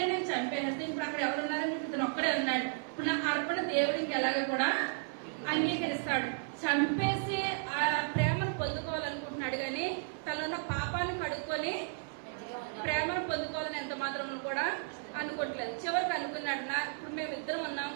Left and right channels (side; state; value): left; silent; 55 dB below the other